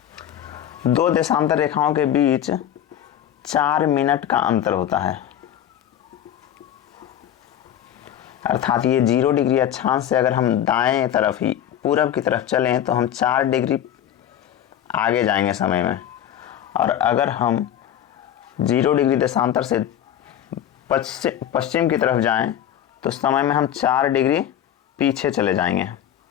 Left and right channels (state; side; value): quieter; right; 10.6 dB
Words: दो देशांतर रेखाओं के बीच 4 मिनट का अंतर होता है। अर्थात ये 0 डिग्री अक्षांश से अगर हम दाएं तरफ ही पूरब की तरफ चलें तो हम 4 डिग्री आगे जाएंगे समय में, और अगर हम 0 डिग्री देशांतर से पश्चिम की तरफ जाएं तो समय में हम 4 डिग्री पीछे चले जाएंगे।